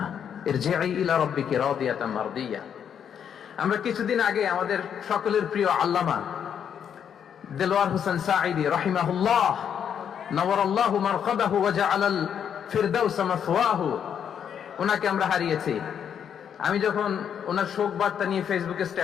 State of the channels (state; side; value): quieter; right; 8.3 dB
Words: ইরজিই ইলা রাব্বিকি রাদিয়াতাম মারদিয়া। আমরা কিছুদিন আগে আমাদের সকলের প্রিয় আল্লামা দেলোয়ার হোসেন সাঈদী রাহিমাহুল্লাহ নওয়ারাল্লাহু মারকাদাহু ওয়া জাআলাল ফিরদাউস মাসওয়াহু, ওনাকে আমরা হারিয়েছি। আমি যখন ওনার শোক বার্তা নিয়ে ফেসবুকে